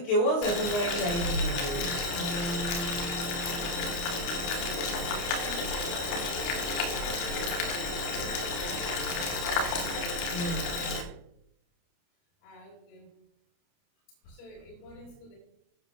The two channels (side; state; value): right; late; 29 ms